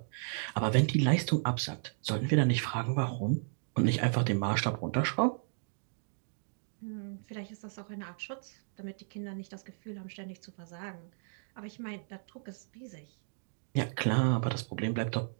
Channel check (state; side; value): silent; left; digital silence